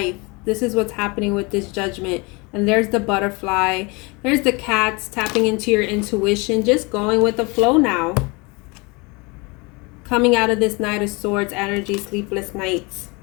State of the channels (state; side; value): quieter; right; 27.6 dB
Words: This is what's happening with this Judgment. And there's the butterfly. There's the cats tapping into your intuition, just going with the flow now. Coming out of this Knight of Swords energy, sleepless nights.